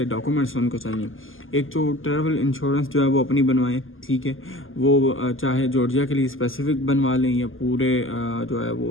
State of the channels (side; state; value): right; late; 0.59 ms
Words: ڈاکومنٹس ان کو چاہیے۔ ایک تو ٹریول انشورنس جو ہے وہ اپنی بنوائیں، ٹھیک ہے، وہ چاہے جارجیا کے لیے اسپیسیفک بنوا لیں یا پورے جو ہے